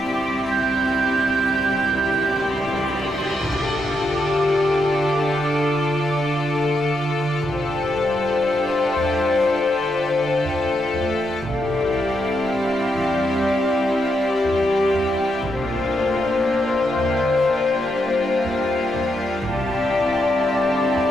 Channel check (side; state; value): left; noise; hum, 26 dB below the sound